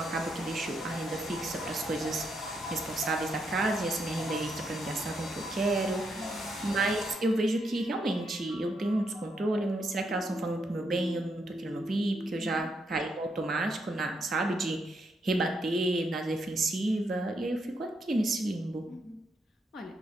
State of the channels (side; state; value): both; normal; correlation 0.79